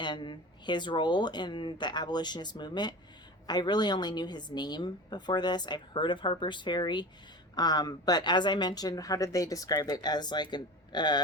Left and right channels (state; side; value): normal; both; correlation 0.33